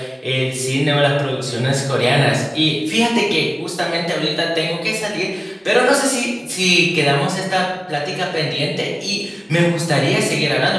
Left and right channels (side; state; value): both; identical; correlation 1.00